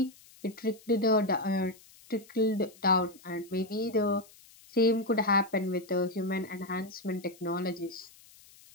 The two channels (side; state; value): left; noise; hiss, 24 dB below the sound